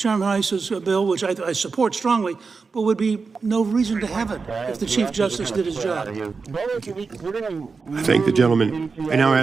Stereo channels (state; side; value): quieter; left; 4.7 dB